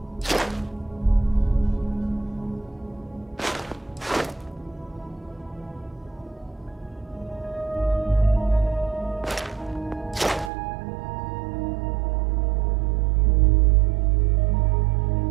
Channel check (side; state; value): left; drops out; at 10.5 s